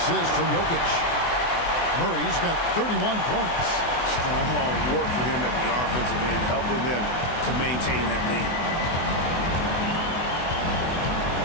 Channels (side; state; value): right; late; 24 ms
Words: from Jokic. Murray's got 31 points. Strong work for him at the offensive end, helping them to maintain that lead.